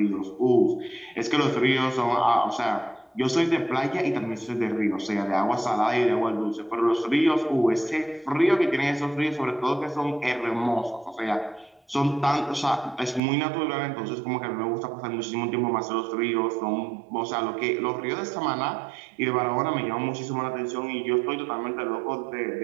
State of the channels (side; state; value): left; drops out; at 13.2 s